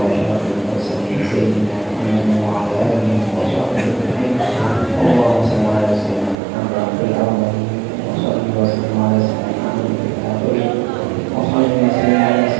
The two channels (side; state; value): left; drops out; at 6.4 s